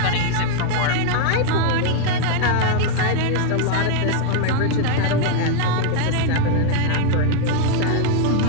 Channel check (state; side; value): different; both; correlation 0.00